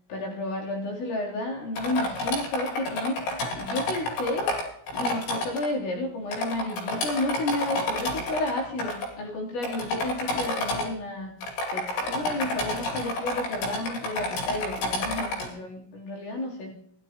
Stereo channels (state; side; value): late; right; 17 ms